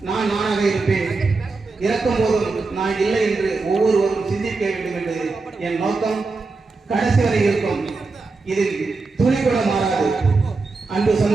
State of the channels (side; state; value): left; quieter; 3.9 dB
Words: நான் நானாக இருப்பேன், இறக்கும் போதும் நான் இல்லை என்று ஒவ்வொருவரும் சிந்திக்க வேண்டும் என்று என் நோக்கம் கடைசி வரை இருக்கும். இதில் துணி கூட மாறாது. அன்பு